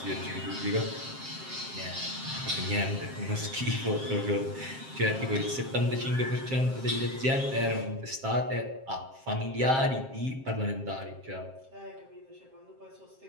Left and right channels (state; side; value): late; left; 7.5 ms